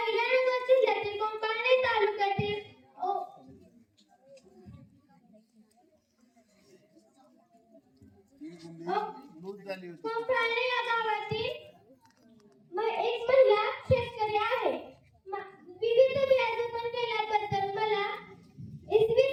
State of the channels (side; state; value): both; identical; correlation 1.00